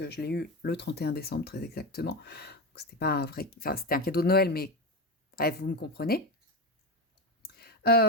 je l'ai eu le 31 décembre très exactement. Donc, c'était pas un vrai, enfin c'était un cadeau de Noël, mais bref, vous me comprenez.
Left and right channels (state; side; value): normal; both; correlation 0.17